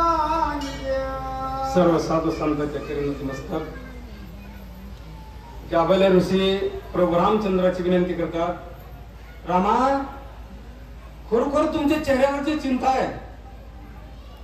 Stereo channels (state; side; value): identical; both; correlation 1.00